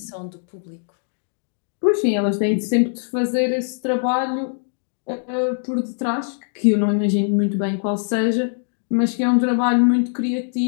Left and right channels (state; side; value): silent; right; digital silence